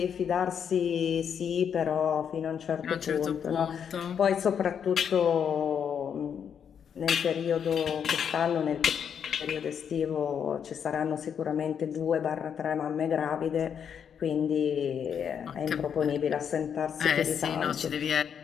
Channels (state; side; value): quieter; right; 7.8 dB